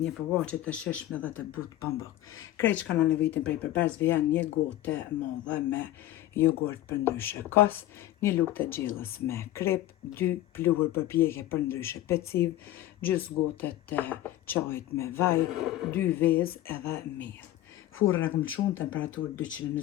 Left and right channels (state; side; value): quieter; right; 14.2 dB